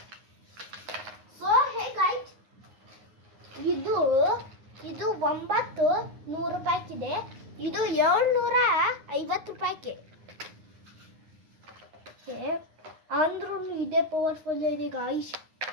ಸೊ ಹೇ ಗಾಯ್ಸ್, ಇದು 900 ರೂಪಾಯಿಗಿದೆ, ಇದು 750 ರೂಪಾಯಿಗೆ. ಅಂದ್ರೂ ಇದೇ ಪವರ್ಫುಲ್ ಇದೆ ಗಾಯ್ಸ್.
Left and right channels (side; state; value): left; late; 9.6 ms